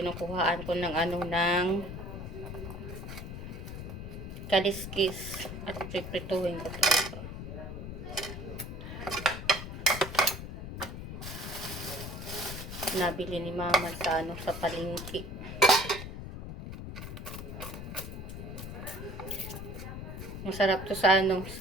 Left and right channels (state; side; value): noise; left; rumble, 8 dB below the sound